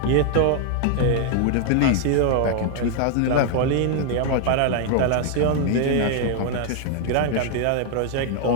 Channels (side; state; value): both; different; correlation 0.00